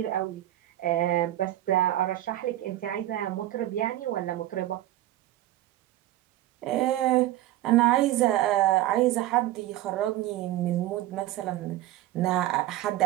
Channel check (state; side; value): quieter; left; 14.7 dB